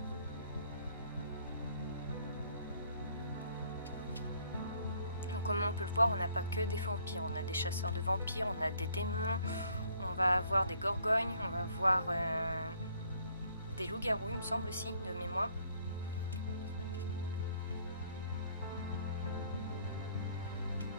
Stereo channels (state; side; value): inverted; both; correlation -0.64